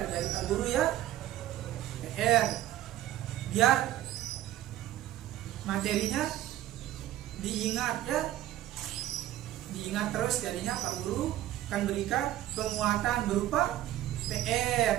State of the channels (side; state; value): left; quieter; 13.7 dB